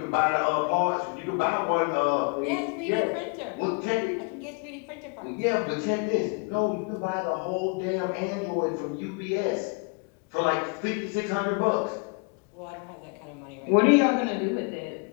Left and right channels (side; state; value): right; quieter; 33.6 dB